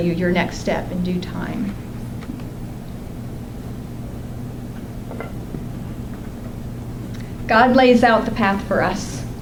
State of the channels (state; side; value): identical; both; correlation 1.00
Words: your next step in due time. God lays out the path for us,